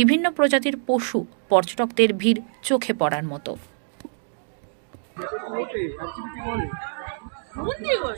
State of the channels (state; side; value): silent; left; digital silence